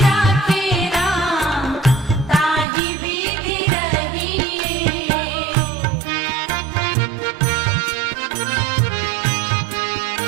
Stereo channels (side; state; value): left; drops out; at 2.7 s